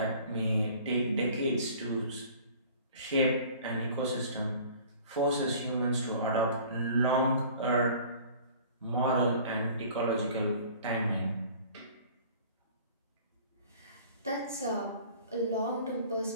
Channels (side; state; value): both; inverted; correlation -0.48